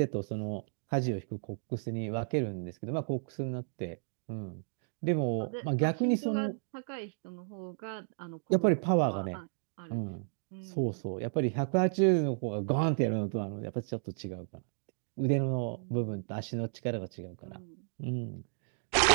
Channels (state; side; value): silent; left; digital silence